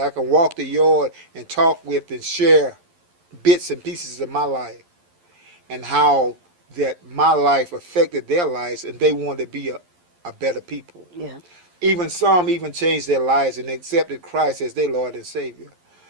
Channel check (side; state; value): left; late; 11 ms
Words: could walk the yard and talk with and share bits and pieces of my life, and how that my life affected their lives, and they wanted to be a better people. Yeah. Even some changed their lives and accepted Christ as their Lord and Savior.